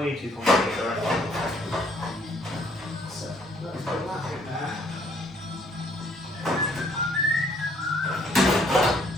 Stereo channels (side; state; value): both; normal; correlation 0.64